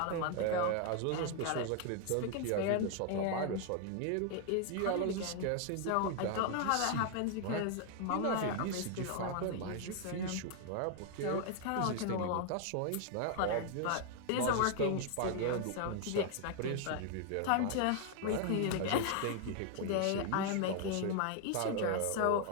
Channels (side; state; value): both; different; correlation 0.00